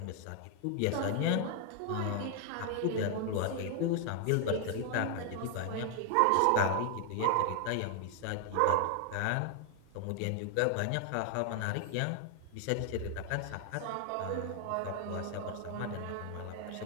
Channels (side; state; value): both; different; correlation 0.00